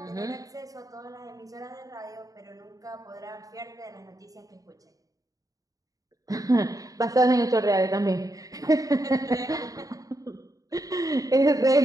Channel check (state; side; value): late; left; 0.17 ms